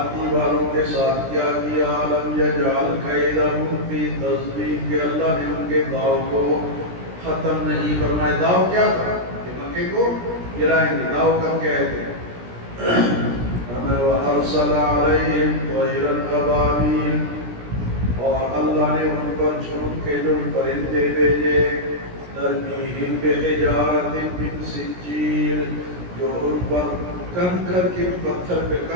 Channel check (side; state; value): left; late; 17 ms